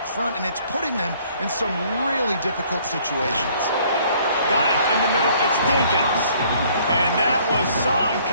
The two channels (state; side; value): inverted; both; correlation -0.60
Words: front, and it's putting them in some really difficult situations. Got it in the middle. It's Dinkins. And that was some